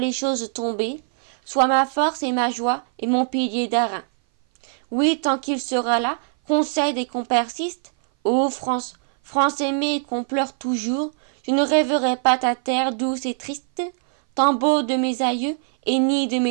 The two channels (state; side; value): silent; left; 58 dB below the other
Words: choses tombées, soit ma force et ma joie et mon pilier d'airain. Oui, tant qu'il sera là, qu'on cède et qu'on persiste, ô France, France aimée et qu'on pleure toujours, je ne rêverai pas ta terre douce et triste, tombeau de mes aïeux et nid de